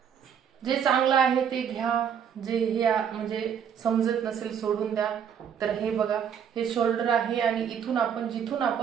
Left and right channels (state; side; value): quieter; left; 8.0 dB